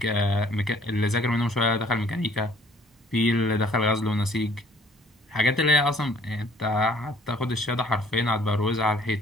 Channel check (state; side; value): normal; both; correlation 0.58